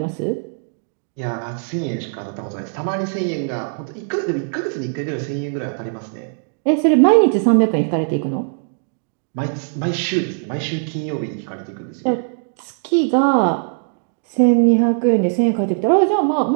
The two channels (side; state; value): left; silent; 66 dB below the other